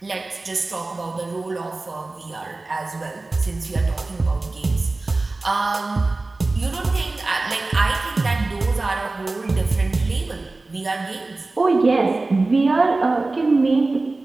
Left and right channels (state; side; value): quieter; left; 3.3 dB